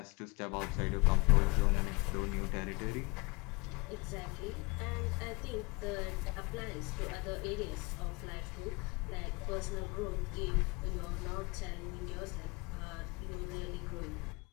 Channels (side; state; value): right; quieter; 25.9 dB